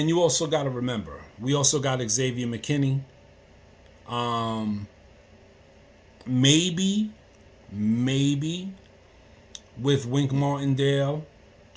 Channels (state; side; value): identical; both; correlation 1.00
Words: you also got to remember, we also got Xavier McKinney. Maybe with Wink Martindale,